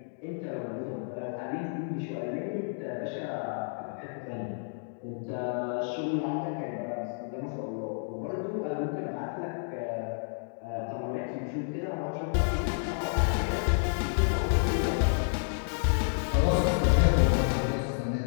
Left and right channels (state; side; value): silent; right; digital silence